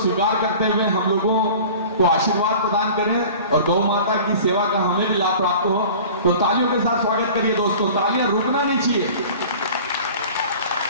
करते हुए हम लोगों को आशीर्वाद प्रदान करें और गौ माता की सेवा का हमें भी लाभ प्राप्त हो। तो तालियों के साथ स्वागत करिए दोस्तों, तालियां रुकना नहीं चाहिए।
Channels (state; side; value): inverted; both; correlation -0.42